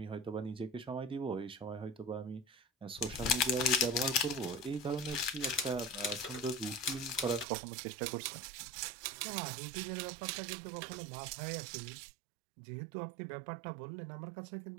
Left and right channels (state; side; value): drops out; left; at 7.5 s